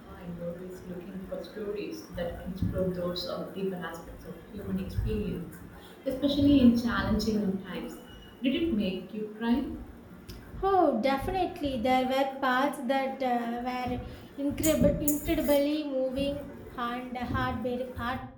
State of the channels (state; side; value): identical; both; correlation 1.00